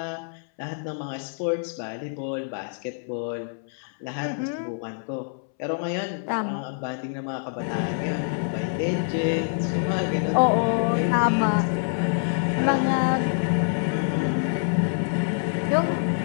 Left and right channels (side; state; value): right; silent; 61 dB below the other